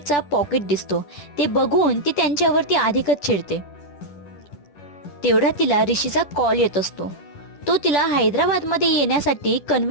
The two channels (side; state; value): right; late; 10 ms